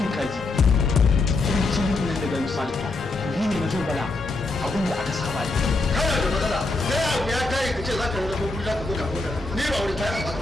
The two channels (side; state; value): right; quieter; 3.3 dB